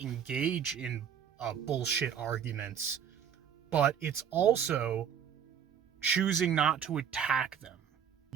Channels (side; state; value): left; quieter; 8.3 dB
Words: engage in bullshit arguments, but it's also choosing not to attack them.